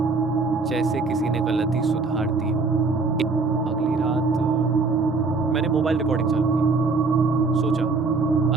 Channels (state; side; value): quieter; left; 4.1 dB